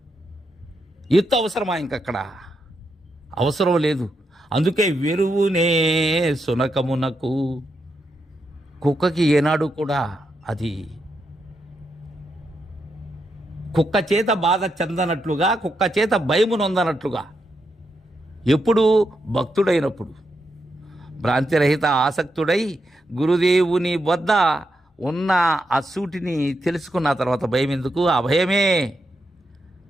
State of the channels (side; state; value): both; normal; correlation 0.83